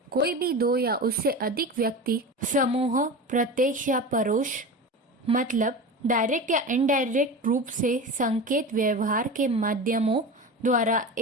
कोई भी दो या उससे अधिक व्यक्ति समूह प्रत्यक्ष या परोक्ष मतलब डायरेक्ट या इनडायरेक्ट रूप से संकेत व्यवहार के माध्यमों द्वारा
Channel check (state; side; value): normal; both; correlation 0.29